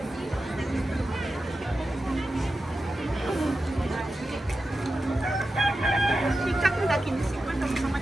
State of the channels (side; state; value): both; normal; correlation 0.91